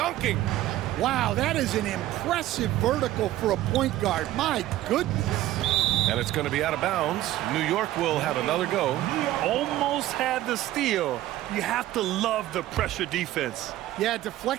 Wow, that is an impressive vertical for a point guard. My goodness. And it's going to be out of bounds. New York will have another go. Almost had the steal. You have to love the pressure defense. Yeah,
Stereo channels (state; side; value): quieter; left; 14.6 dB